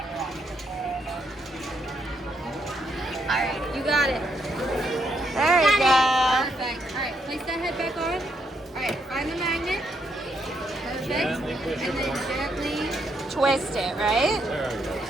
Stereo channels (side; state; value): both; normal; correlation 0.76